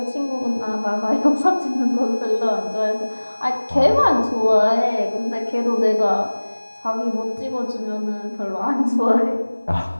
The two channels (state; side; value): inverted; both; correlation -1.00